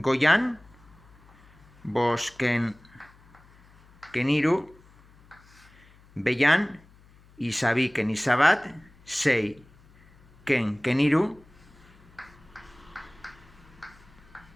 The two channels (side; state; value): left; noise; hum, 27 dB below the sound